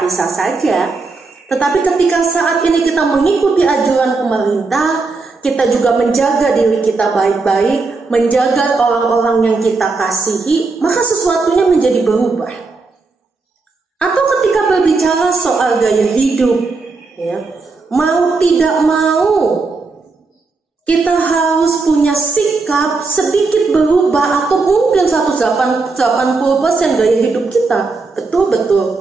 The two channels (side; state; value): left; quieter; 4.0 dB